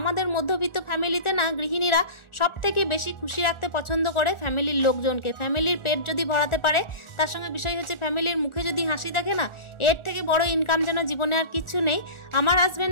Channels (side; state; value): right; late; 1.4 ms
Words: মধ্যবিত্ত ফ্যামিলিতে না গৃহিণীরা সব থেকে বেশি খুশি রাখতে পছন্দ করে ফ্যামিলির লোকজনকে। ফ্যামিলির পেট যদি ভরাতে পারে, তার সঙ্গে বিষয় হচ্ছে ফ্যামিলির মুখে যদি হাসি দেখে না, এর থেকে বড় ইনকাম যেন জীবনে আর কিচ্ছু নেই। আমার